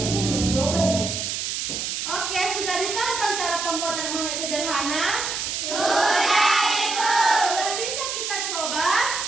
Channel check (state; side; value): noise; right; hiss, 3 dB below the sound